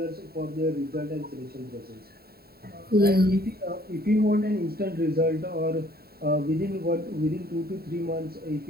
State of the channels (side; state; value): left; late; 0.45 ms